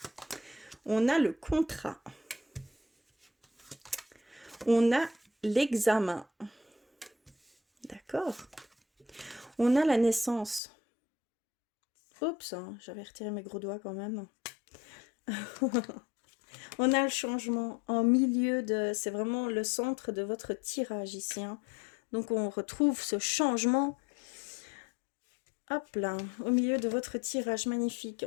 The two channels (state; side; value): drops out; right; at 10.6 s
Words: On a le contrat. On a l'examen. D'accord. On a la naissance. Oups, hein, j'avais retiré mes gros doigts quand même. On a le changement en milieu de... C'est vraiment le centre de votre tirage ici. Hein. Donc, on retrouve ce changement. Hop là, au milieu de votre tirage magnifique.